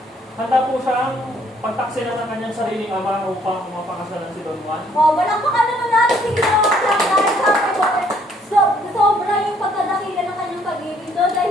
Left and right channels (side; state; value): both; normal; correlation 0.64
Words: handa po siyang pagtaksilan ng kanyang sariling ama upang mapakasalan si Don Juan. Malakpakan naman natin si Ginoong Clark dahil sabi ko, sobra yung pagkadakila ng kanyang pag-ibig doon